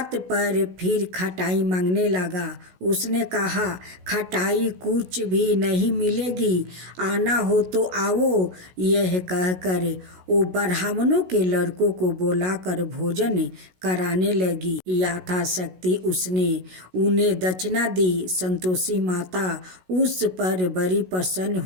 पर फिर खटाई मांगने लगा। उसने कहा, खटाई कुछ भी नहीं मिलेगी, आना हो तो आओ। यह कहकर वो ब्राह्मणों के लड़कों को बुलाकर भोजन कराने लगी। यथाशक्ति उसने उन्हें दक्षिणा दी। संतोषी माता उस पर बड़ी प्रसन्न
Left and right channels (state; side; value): late; left; 16 ms